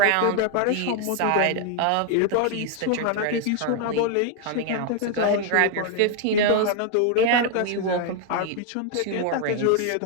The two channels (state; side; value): different; both; correlation 0.00